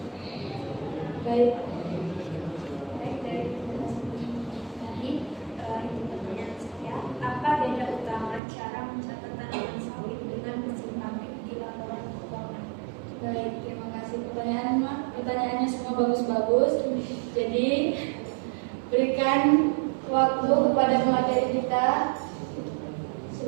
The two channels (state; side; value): drops out; left; at 8.4 s